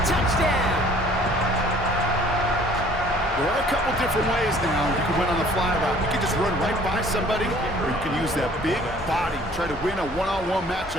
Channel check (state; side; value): normal; both; correlation 0.54